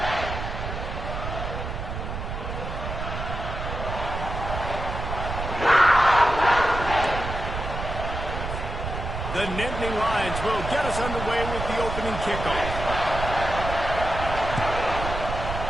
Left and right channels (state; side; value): noise; right; rumble, 5 dB below the sound